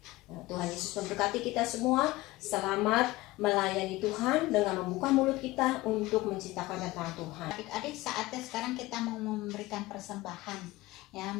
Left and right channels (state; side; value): quieter; right; 19.1 dB